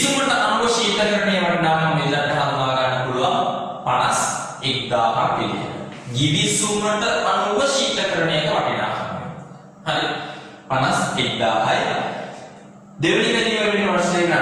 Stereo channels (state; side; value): identical; both; correlation 1.00